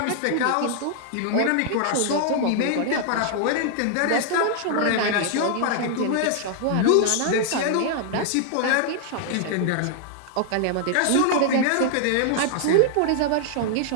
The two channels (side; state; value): both; different; correlation -0.01